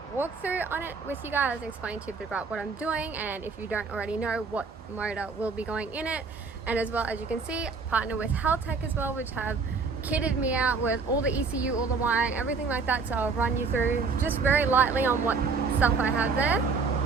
walkthrough on it with you guys, explain to you a bit about what I'm doing, and if you don't already know, what motor will be going in it. And as well, as you can see, partner with Haltech as well, which have kitted me out with all the ECU, all the wiring, everything like that. So I'll run you through just very lightly on what stuff I have there.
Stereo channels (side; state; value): left; quieter; 4.7 dB